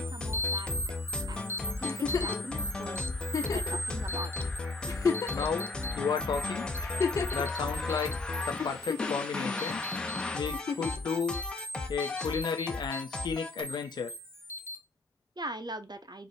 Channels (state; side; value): quieter; right; 3.5 dB